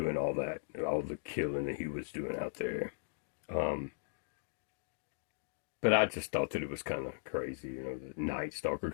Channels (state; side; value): silent; right; digital silence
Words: all that, all the killing that he was doing out there. But I just thought that it was kind of crazy, the Night Stalker.